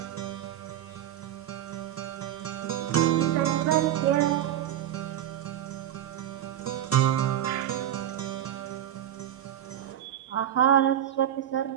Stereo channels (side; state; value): left; quieter; 11.2 dB